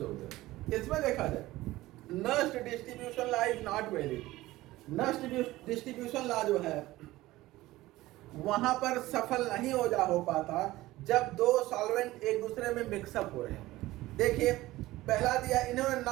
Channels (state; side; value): quieter; left; 17.6 dB